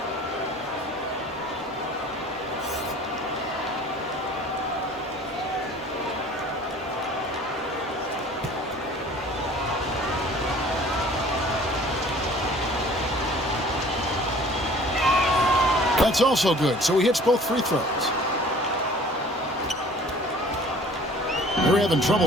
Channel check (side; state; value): both; normal; correlation 0.49